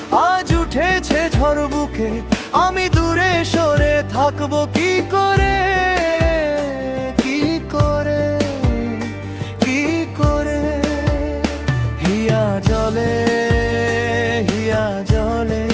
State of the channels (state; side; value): identical; both; correlation 1.00